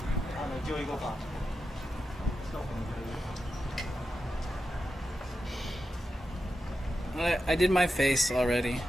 I did my face already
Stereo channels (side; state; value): both; normal; correlation 0.90